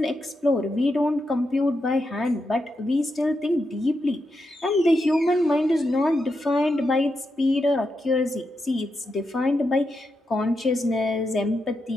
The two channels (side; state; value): both; normal; correlation 0.85